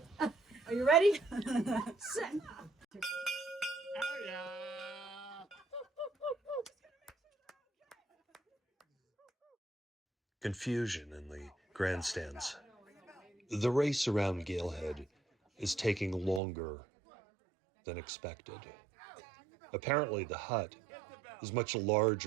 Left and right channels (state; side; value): drops out; left; at 16.4 s